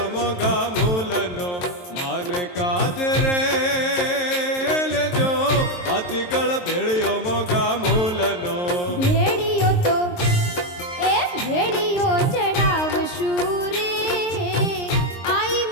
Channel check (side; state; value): right; late; 23 ms